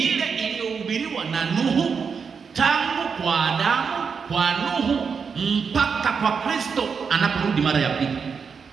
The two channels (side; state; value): left; quieter; 5.9 dB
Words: iliyohubiriwa na Nuhu, tangu kwa Adamu, kwa Nuhu mpaka kwa Kristo anaporudi mara ya pili.